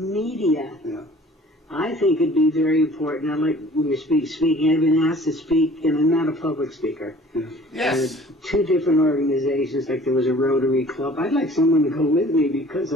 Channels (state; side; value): normal; both; correlation 0.50